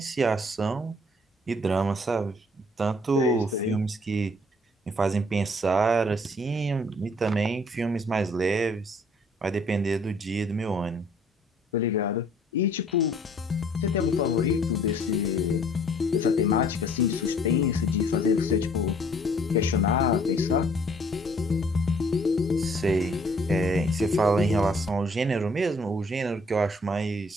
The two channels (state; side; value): normal; both; correlation 0.59